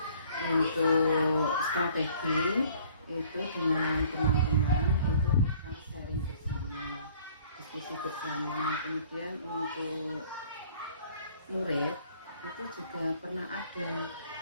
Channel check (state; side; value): inverted; both; correlation -0.56